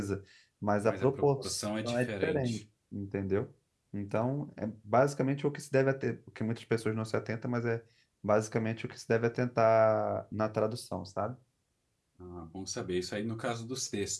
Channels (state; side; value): identical; both; correlation 1.00